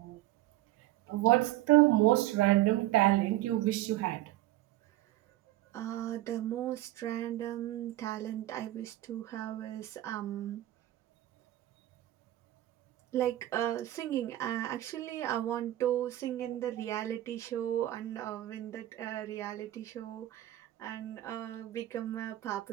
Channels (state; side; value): quieter; left; 15.3 dB